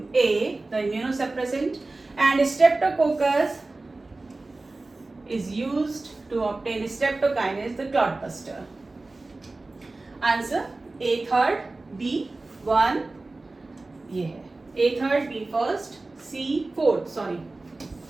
A, the immunosuppressant, and Streptococcus is used to obtain streptokinase, the clot buster. Answer A third, B 1, yeah. A third, B first, C fourth, sorry.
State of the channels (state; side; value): quieter; left; 3.2 dB